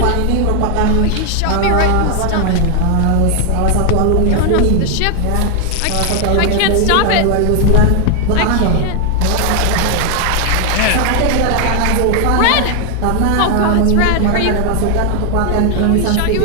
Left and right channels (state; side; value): different; both; correlation 0.00